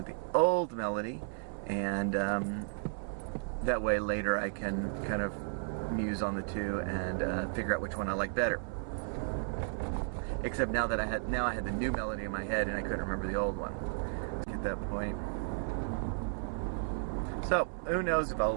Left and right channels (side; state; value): left; silent; 55 dB below the other